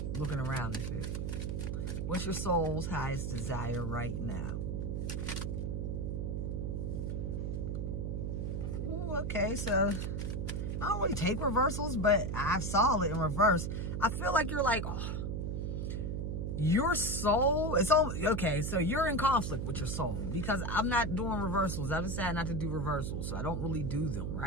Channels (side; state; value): right; noise; hum, 1 dB below the sound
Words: looking around and shit. What's your soul's highest desire right now? Ooh, okay, so I don't really take reversals, but I saw it in reverse. I feel like you're like, oh, your soul, it's all, okay, so you're in conflict with your soul because I'm not doing reversals. I've decided not to do reversals, so I don't really do them,